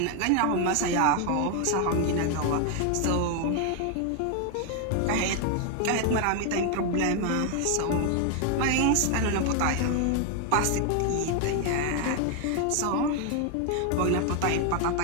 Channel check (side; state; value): both; different; correlation 0.00